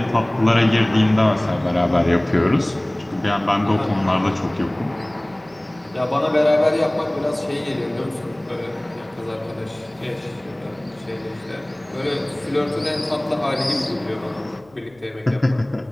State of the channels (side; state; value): left; noise; hum, 30 dB below the sound